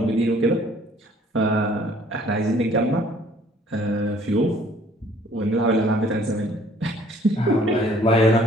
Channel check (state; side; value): normal; both; correlation 0.58